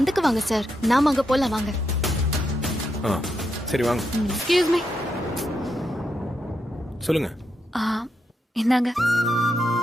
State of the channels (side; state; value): both; normal; correlation 0.83